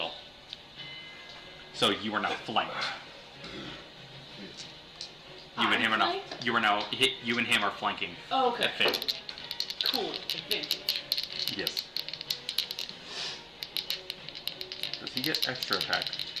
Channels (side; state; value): left; noise; rumble, 30 dB below the sound